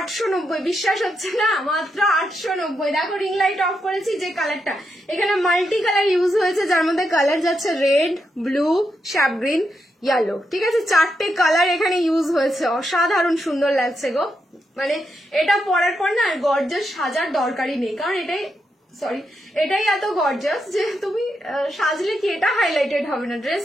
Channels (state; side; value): normal; both; correlation 0.83